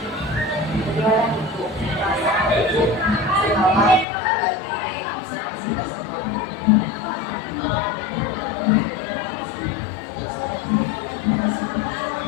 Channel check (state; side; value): drops out; right; at 4.0 s